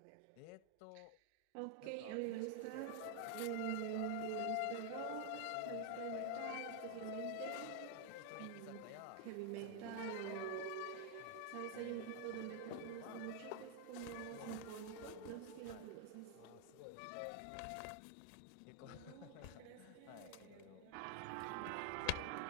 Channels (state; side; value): different; both; correlation 0.00